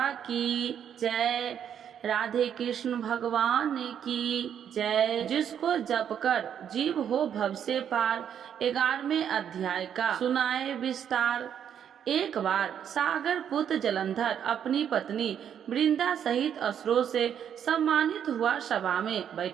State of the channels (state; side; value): quieter; left; 8.8 dB